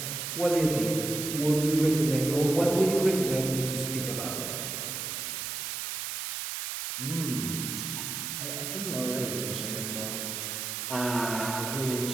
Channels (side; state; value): right; noise; hiss, 4 dB below the sound